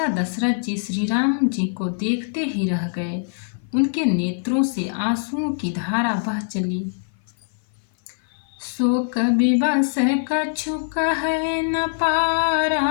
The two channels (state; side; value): silent; right; 57 dB below the other